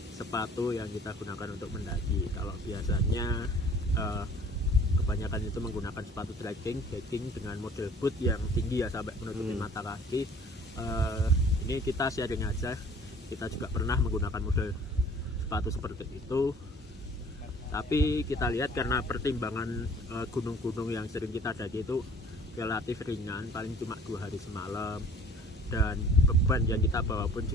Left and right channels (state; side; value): normal; both; correlation 0.52